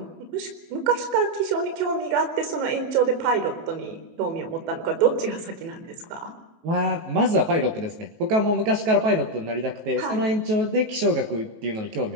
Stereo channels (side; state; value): left; late; 18 ms